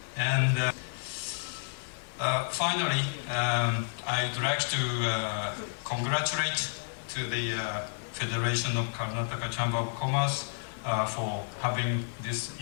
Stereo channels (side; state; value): right; silent; digital silence